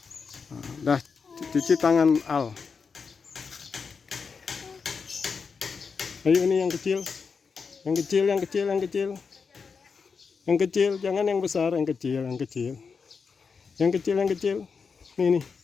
Dah cuci tangan Al. Ayo ini yang kecil. Yang kecil, jangan yang besar, yang kecil. Nih,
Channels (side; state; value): right; quieter; 5.4 dB